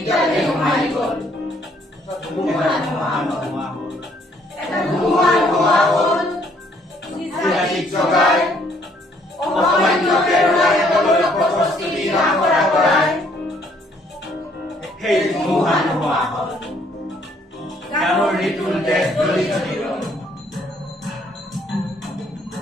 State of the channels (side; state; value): both; normal; correlation 0.65